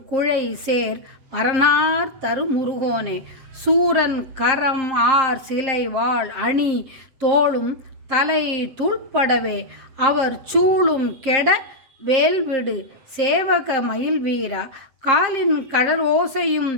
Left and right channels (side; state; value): left; late; 7.5 ms